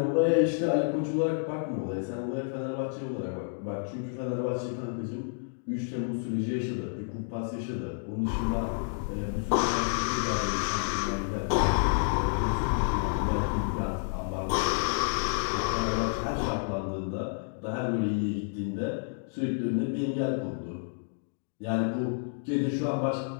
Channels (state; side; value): silent; right; digital silence